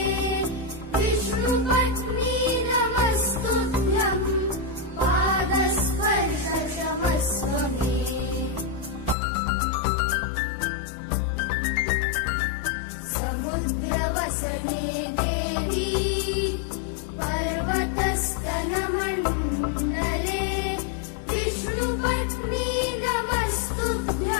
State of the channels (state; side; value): drops out; right; at 9.2 s